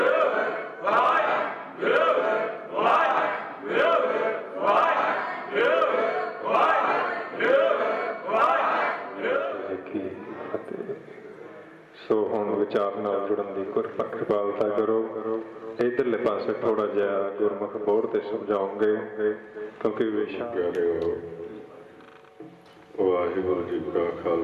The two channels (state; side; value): identical; both; correlation 1.00